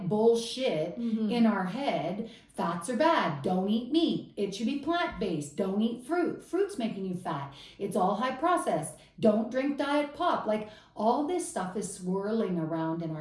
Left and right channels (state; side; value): identical; both; correlation 1.00